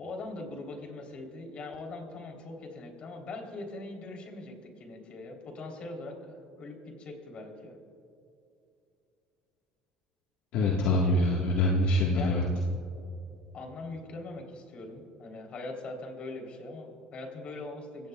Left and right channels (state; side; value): normal; both; correlation 0.35